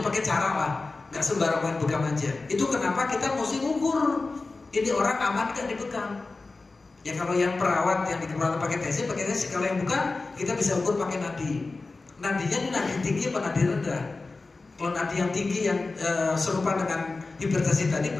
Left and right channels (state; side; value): quieter; right; 3.6 dB